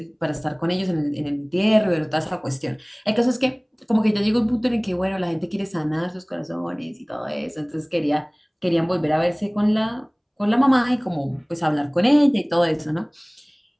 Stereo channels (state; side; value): identical; both; correlation 1.00